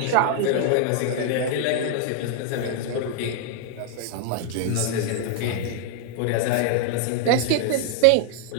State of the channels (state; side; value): different; both; correlation 0.00